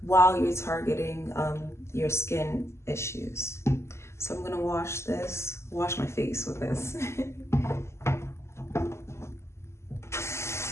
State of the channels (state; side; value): late; right; 0.13 ms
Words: while you're targeting your skin issues. So I'm going to wash my face with this.